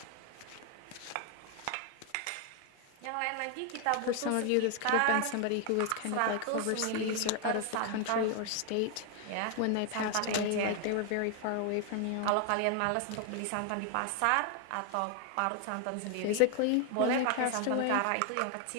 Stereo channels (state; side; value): different; both; correlation 0.00